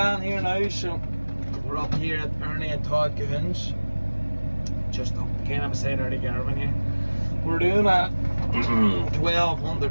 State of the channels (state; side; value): inverted; both; correlation -1.00